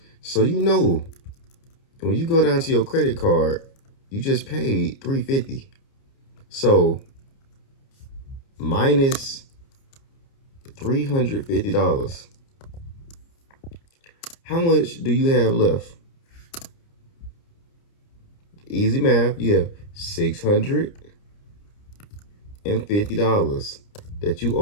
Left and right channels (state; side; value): late; right; 29 ms